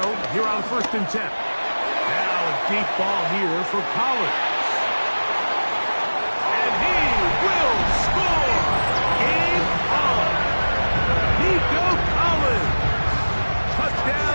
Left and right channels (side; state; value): both; inverted; correlation -1.00